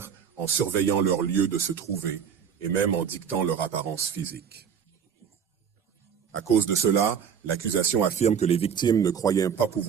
en surveillant leur lieu de se trouver, et même en dictant leur apparence physique. À cause de cela, l'accusation affirme que les victimes ne croyaient pas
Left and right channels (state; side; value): quieter; left; 7.5 dB